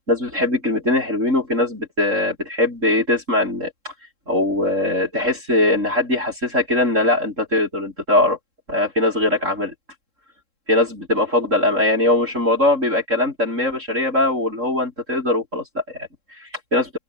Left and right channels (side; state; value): left; late; 3.7 ms